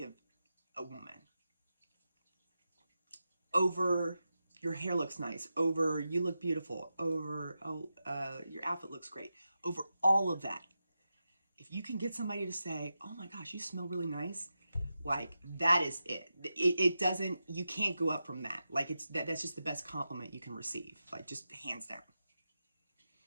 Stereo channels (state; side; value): inverted; both; correlation -0.90